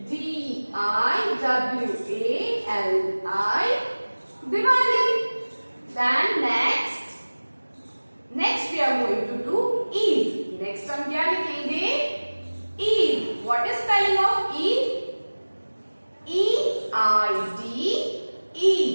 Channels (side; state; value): both; inverted; correlation -1.00